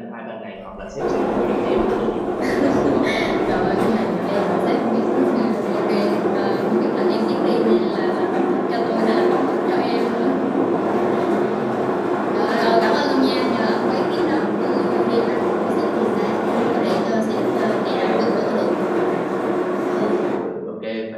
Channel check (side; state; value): both; identical; correlation 1.00